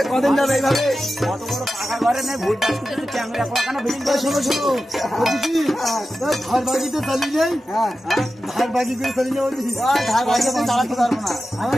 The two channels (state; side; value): normal; both; correlation 0.92